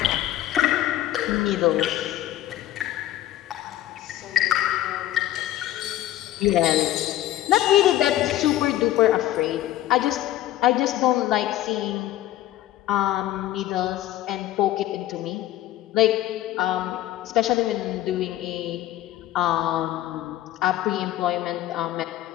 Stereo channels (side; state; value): right; quieter; 13.9 dB